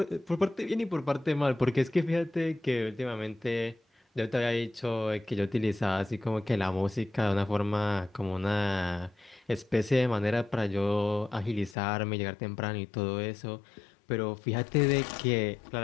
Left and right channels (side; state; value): right; drops out; at 11.8 s